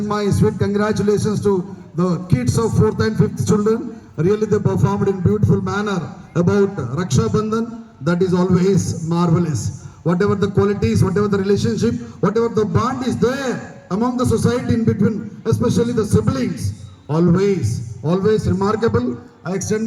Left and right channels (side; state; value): both; identical; correlation 1.00